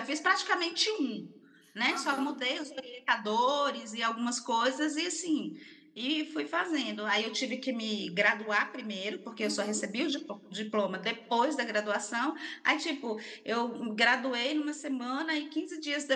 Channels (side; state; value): both; identical; correlation 1.00